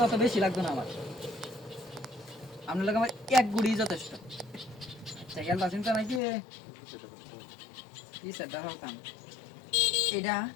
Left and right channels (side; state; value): right; drops out; at 6.2 s